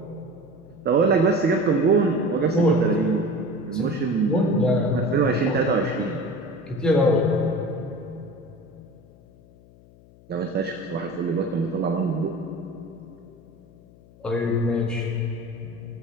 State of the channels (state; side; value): noise; left; hum, 25 dB below the sound